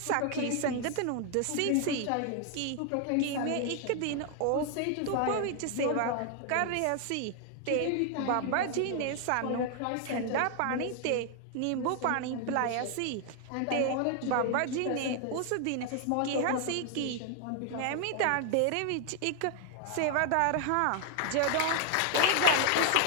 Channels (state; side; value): different; both; correlation 0.00